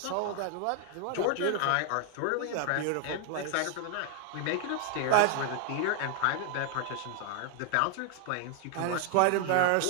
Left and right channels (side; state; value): both; different; correlation 0.00